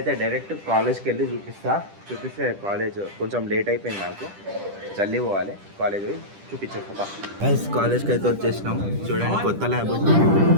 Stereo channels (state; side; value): late; left; 10 ms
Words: డైరెక్ట్ కాలేజ్కి వెళ్ళి చూపిస్తే కాలేజ్ కొంచెం లేట్ అయిపోయింది. నాకు జల్దీ పోవాలి, కాలేజ్ పోయి చూపించేస్తా. కాలేజ్కి అయితే వచ్చేసినాం. చూడండి, కొత్త ల్యాబ్,